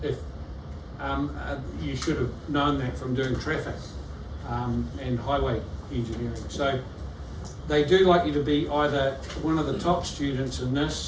if you should have known that from doing traffic and highway engineering. So they do like you to be either one of the top students in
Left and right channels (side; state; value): both; identical; correlation 1.00